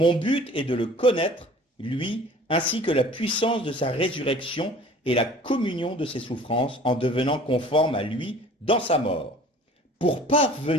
but est de le connaître, lui, ainsi que la puissance de sa résurrection et la communion de ses souffrances en devenant conforme à lui dans sa mort. Pour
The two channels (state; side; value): normal; both; correlation 0.48